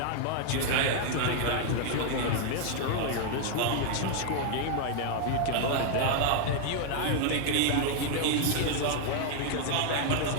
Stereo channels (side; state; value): both; different; correlation 0.00